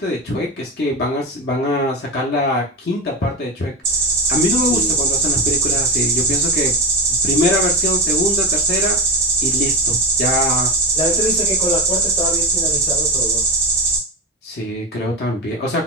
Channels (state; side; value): normal; both; correlation 0.19